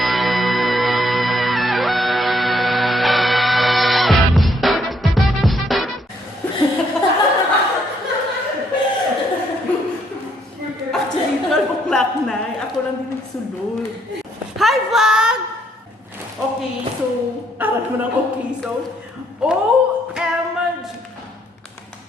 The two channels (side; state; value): both; normal; correlation 0.70